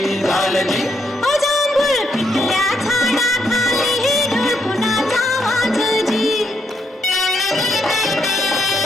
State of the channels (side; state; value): both; normal; correlation 0.76